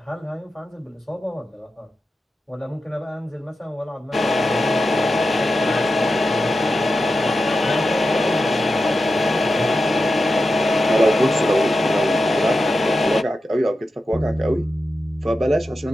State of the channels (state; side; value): normal; both; correlation 0.91